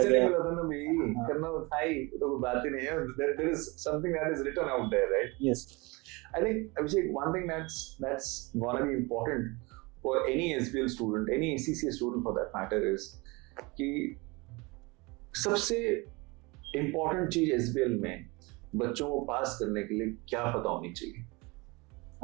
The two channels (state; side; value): quieter; left; 25.7 dB